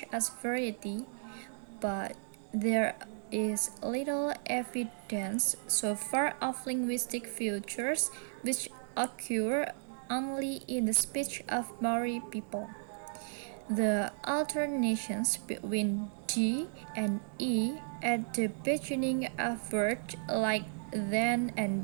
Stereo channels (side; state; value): left; silent; digital silence